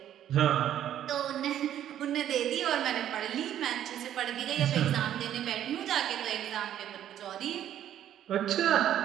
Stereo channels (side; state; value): left; quieter; 11.0 dB